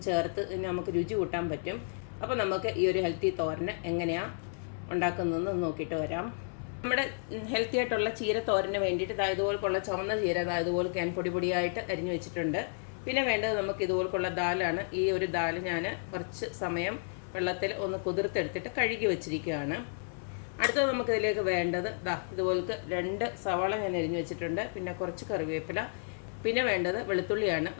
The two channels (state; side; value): silent; right; 56 dB below the other